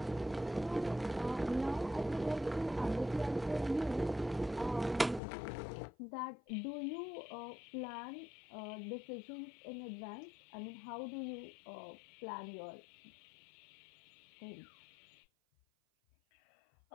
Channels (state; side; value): drops out; right; at 5.2 s